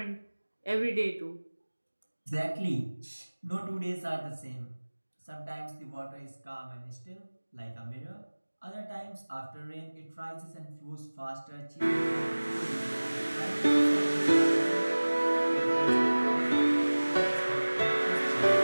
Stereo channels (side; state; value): both; inverted; correlation -1.00